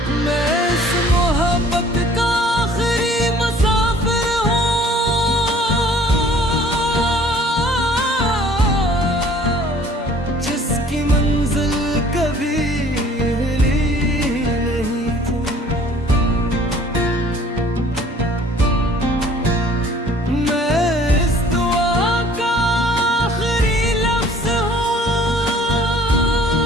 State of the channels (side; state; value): both; normal; correlation 0.53